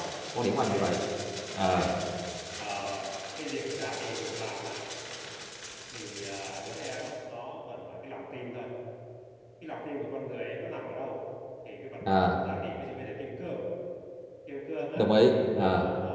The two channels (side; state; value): both; identical; correlation 1.00